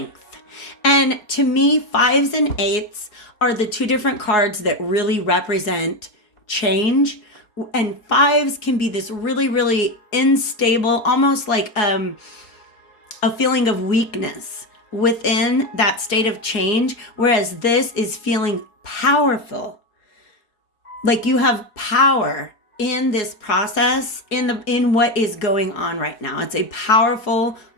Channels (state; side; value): late; right; 4.7 ms